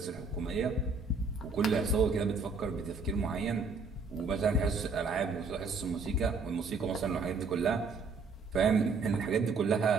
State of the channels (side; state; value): left; quieter; 4.3 dB